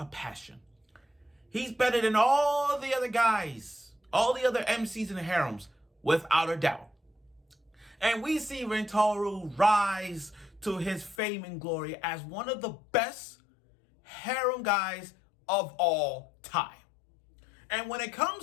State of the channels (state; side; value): drops out; right; at 11.2 s